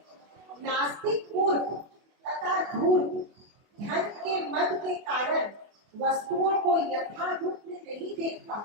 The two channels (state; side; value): late; left; 24 ms